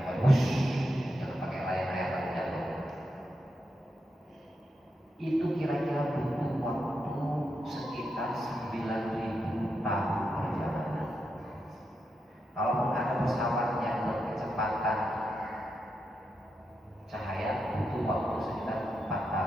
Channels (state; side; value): normal; both; correlation 0.85